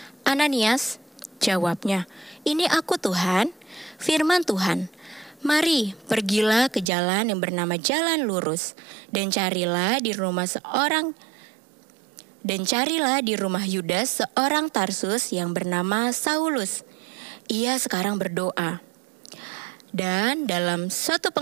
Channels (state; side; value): drops out; left; at 6.9 s